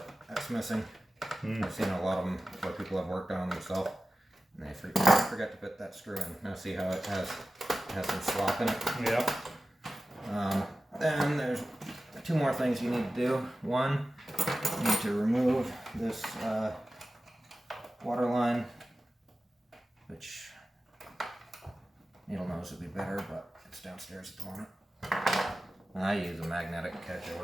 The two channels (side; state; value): both; normal; correlation 0.94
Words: missing. I've seen a lot of them where people have worked on them themselves. And they forget to put that screw in. Now see how it has some slop in it? Yep. Then there's two more things you need to do. One, you need to remove this water line, which needle nose would be better, but it's downstairs at the moment. And I use a magnetic catch, it